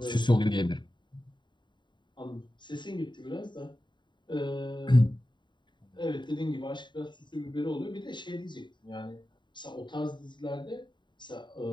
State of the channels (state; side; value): late; right; 0.22 ms